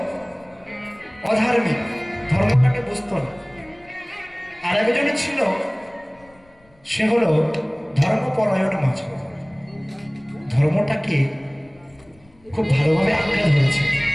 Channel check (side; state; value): left; noise; rumble, 29 dB below the sound